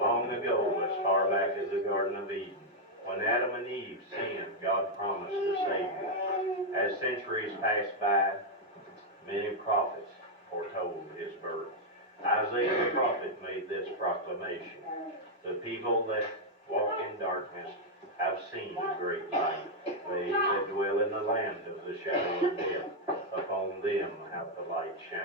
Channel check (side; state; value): both; normal; correlation -0.02